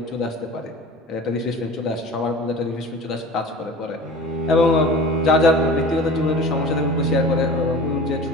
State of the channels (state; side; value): normal; both; correlation 0.39